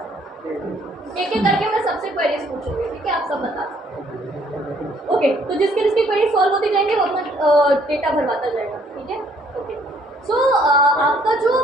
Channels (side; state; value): both; normal; correlation 0.64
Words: एक एक करके मैं सबसे क्वेरीज पूछूंगी, ठीक है, आप सब बता सकते। ओके, तो जिसकी जिसकी क्वेरी सॉल्व होती जाएंगे वो अपना डेटा भरवाता जाएगा, ठीक है। ओके, सो आपका जो